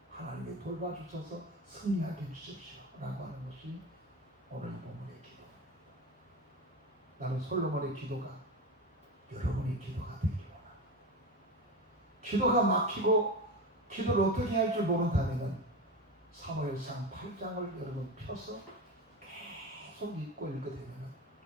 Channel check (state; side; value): normal; both; correlation 0.23